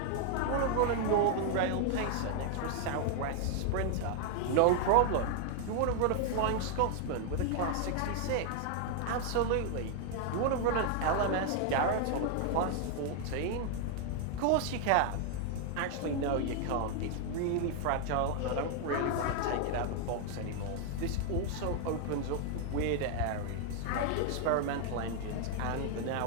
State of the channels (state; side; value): different; both; correlation 0.00